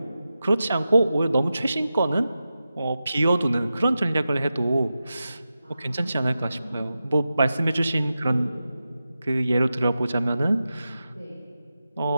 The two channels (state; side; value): inverted; both; correlation -0.92